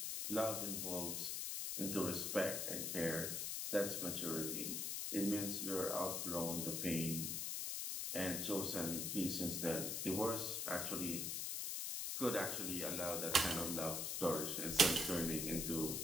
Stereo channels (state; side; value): noise; left; hiss, 1 dB below the sound